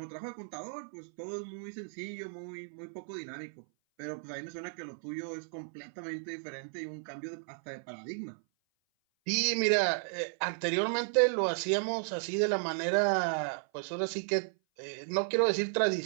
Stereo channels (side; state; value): left; silent; 55 dB below the other